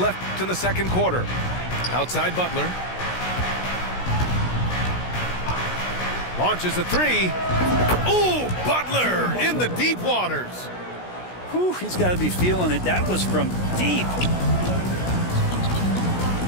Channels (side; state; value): right; late; 16 ms